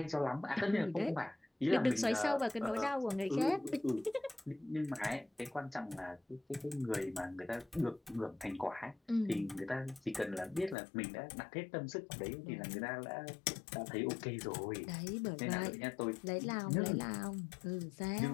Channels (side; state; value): right; drops out; at 10.8 s